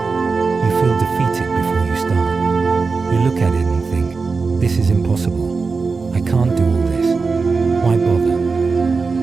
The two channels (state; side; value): quieter; left; 4.5 dB